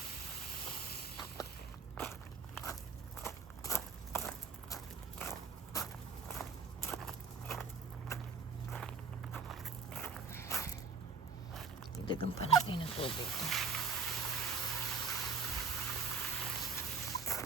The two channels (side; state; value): left; quieter; 5.1 dB